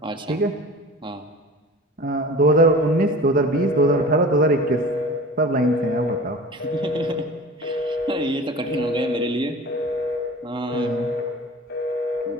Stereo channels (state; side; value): normal; both; correlation 0.38